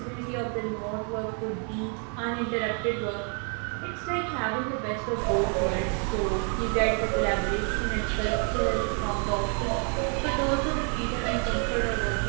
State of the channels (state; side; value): quieter; left; 39.7 dB